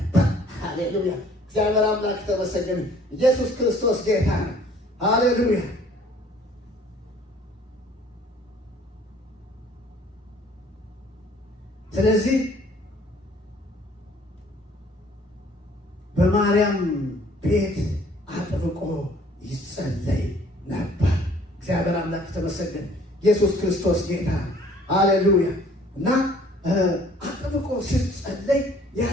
ሃሌሉያ! እግዚአብሔር አምላክ የተመሰገነ። ኢየሱስ ክርስቶስ ጌታ ነው። ሃሌሉያ! ስለዚህ በማርያም ቤት አጥብቆ ይጸለይ ነበር። እግዚአብሔር አምላክ የተመሰገነ። ኢየሱስ ክርስቶስ ጌታ። ሃሌሉያ! እና አጥብቆ ሲጸለይ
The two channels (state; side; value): normal; both; correlation 0.56